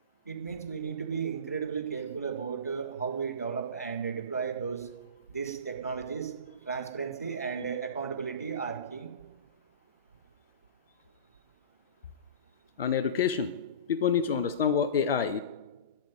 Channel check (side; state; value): both; inverted; correlation -0.31